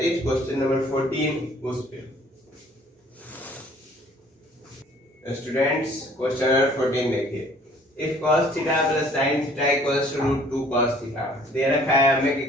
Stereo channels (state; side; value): normal; both; correlation 0.56